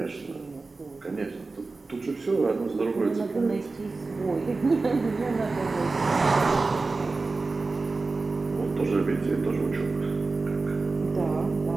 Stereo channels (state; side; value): quieter; left; 3.7 dB